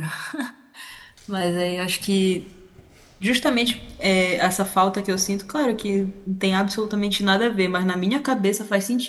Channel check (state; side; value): identical; both; correlation 1.00